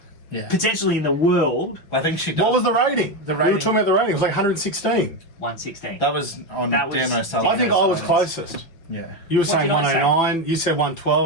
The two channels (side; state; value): right; late; 5.9 ms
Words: potentially in the world, I think she did. What was the rating? The We were rating- talking about the rating. It was like 116. 116. That was on That was- Dan O'Sullivan. I think I was Silence. closest. Yeah. You were What saying did I say? 109. You said